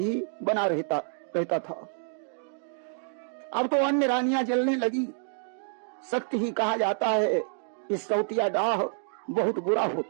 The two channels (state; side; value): silent; left; digital silence